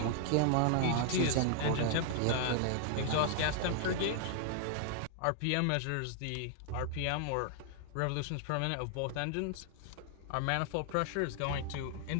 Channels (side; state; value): both; different; correlation 0.00